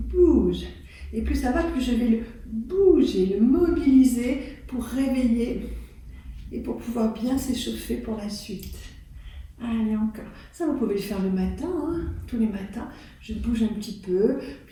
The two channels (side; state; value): both; identical; correlation 1.00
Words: Et plus ça va, plus je vais le bouger, le mobiliser pour réveiller et pour pouvoir bien s'échauffer pour la suite. Allez, encore. Ça, vous pouvez le faire le matin, tous les matins. Je bouge un petit peu,